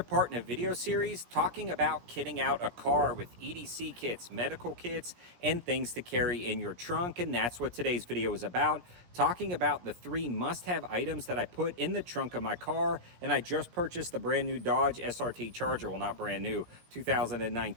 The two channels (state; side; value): late; left; 17 ms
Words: part in a video series talking about kitting out a car with EDC kits, medical kits, and things to carry in your trunk. And that's what today's video is about, talking about the 3 must-have items that I put in the trunk of my car. And I just purchased the brand new Dodge SRT Charger. Well, not brand new,